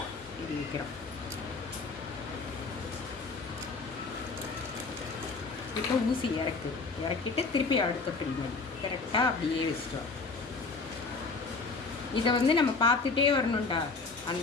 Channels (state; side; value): quieter; right; 4.1 dB